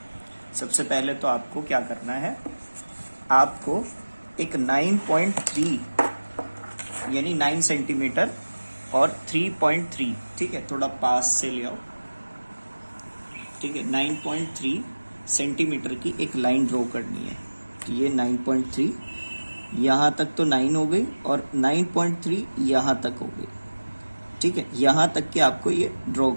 सबसे पहले तो आपको क्या करना है, आपको एक 9.3 यानी 9 सेंटीमीटर और 3.3, ठीक है, थोड़ा पास से ले आओ, ठीक है। 9.3 सेंटीमीटर की एक लाइन ड्रॉ करनी है। तो ये 9.3 यहाँ तक तो 9 हो गई और 9.3 यहाँ तक हो गई, ठीक है। यहाँ तक के आपको ये ड्रॉ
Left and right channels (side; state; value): both; inverted; correlation -1.00